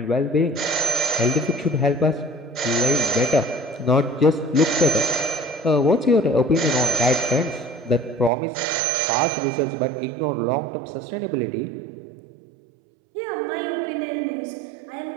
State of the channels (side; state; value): left; drops out; at 8.3 s